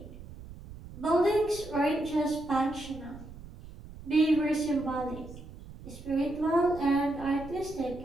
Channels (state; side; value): noise; right; rumble, 15 dB below the sound